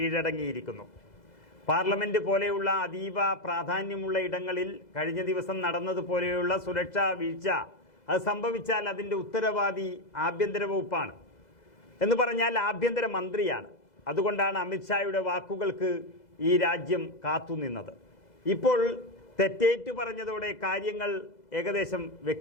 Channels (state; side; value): late; right; 2.0 ms